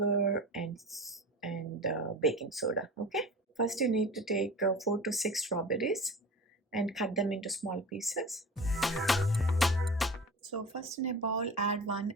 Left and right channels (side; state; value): both; normal; correlation 0.35